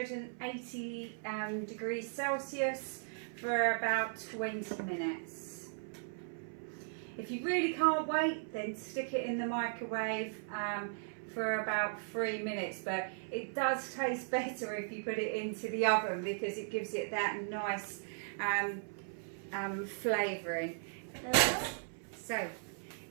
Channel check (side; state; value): left; silent; 53 dB below the other